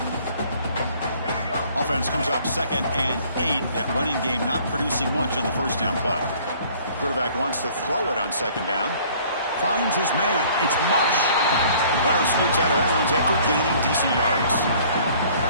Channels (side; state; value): both; inverted; correlation -0.55